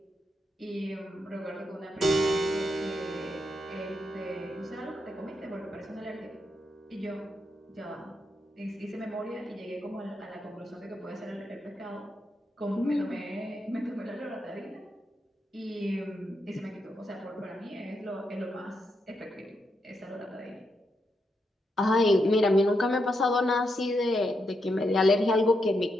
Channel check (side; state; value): both; normal; correlation 0.82